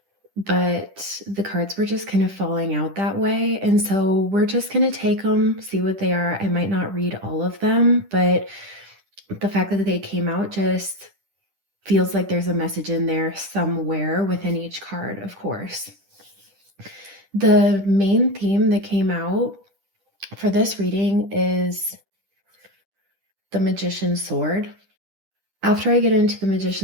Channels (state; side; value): late; left; 10 ms